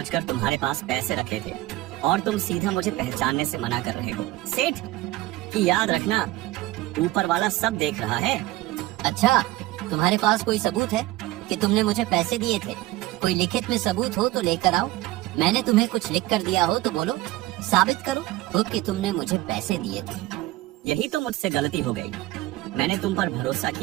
तुम्हारे पास पैसे रखे थे और तुम सीधा मुझे पहचानने से मना कर रहे हो। सेठ की याद रखना, ऊपर वाला सब देख रहा है। अच्छा, तुम्हारे पास कोई सबूत है कि तुमने मुझे पैसे दिए थे? कोई लिखित में सबूत हो तो लेकर आओ। मैंने तुम्हें कुछ लिख कर दिया हो तो बोलो, साबित करो खुद कि तुमने मुझे पैसे दिए थे। यही तो मुझसे गलती हो गई, मैंने तुम पर भरोसा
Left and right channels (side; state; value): left; quieter; 17.4 dB